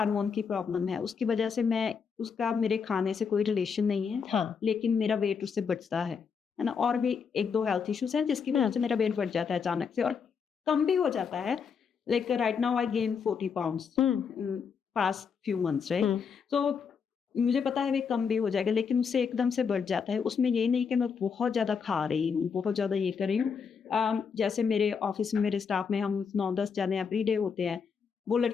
की प्रॉब्लम है, उसकी वजह से उसका मेरे खाने से कोई रिलेशन नहीं है। हाँ। लेकिन मेरा वेट उससे बढ़ता है ना। और भी 1-2 हेल्थ इश्यूज हैं जिसकी वजह से मेरा वेट बढ़ जाता है अचानक से, और कम भी हो जाता है। Like right now I gain 40 pounds past few months, right? तो मुझे पता है वे कम भी हो जाएगा, लेकिन उससे एकदम से बढ़ जाता है। उसमें ये नहीं कि मैं बहुत ज़्यादा खा रही हूँ, बहुत ज़्यादा ये कर रही हूँ। जैसे मेरे ऑफिस में, मेरे स्टाफ में हम 9-10 जने एवरी डे होते हैं। वो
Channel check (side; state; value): right; quieter; 6.2 dB